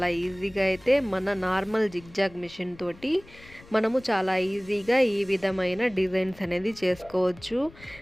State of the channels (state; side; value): noise; left; rumble, 22 dB below the sound